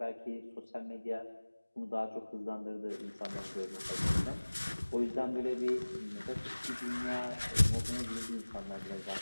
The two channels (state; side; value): inverted; both; correlation -1.00